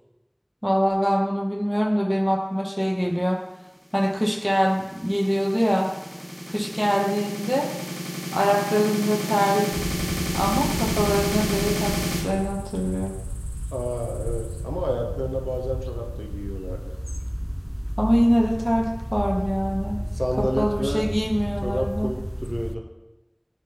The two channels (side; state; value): both; identical; correlation 1.00